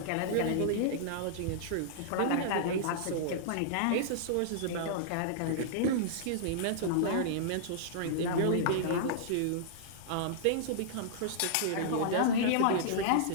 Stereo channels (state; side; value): different; both; correlation -0.02